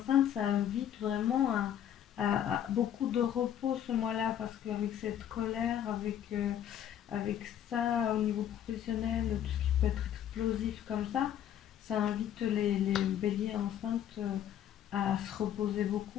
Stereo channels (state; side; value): quieter; right; 10.3 dB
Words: ça invite vraiment à beaucoup de repos ce mois-là, parce qu'avec cette colère, avec ça au niveau professionnel, tout ce qui peut être explosif comme ça invite les béliers enceintes à se reposer